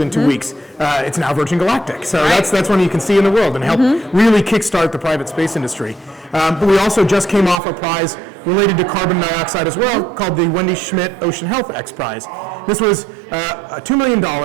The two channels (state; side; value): drops out; left; at 7.6 s